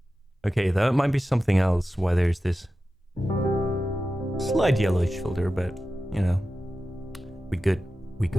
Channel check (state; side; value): normal; both; correlation 0.93